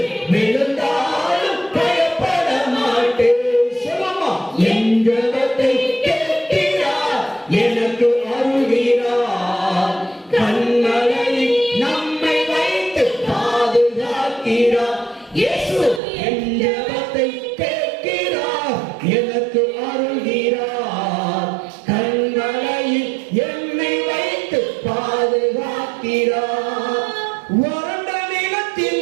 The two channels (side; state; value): left; drops out; at 16.0 s